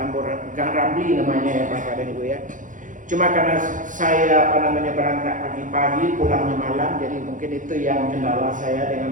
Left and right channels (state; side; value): late; left; 0.38 ms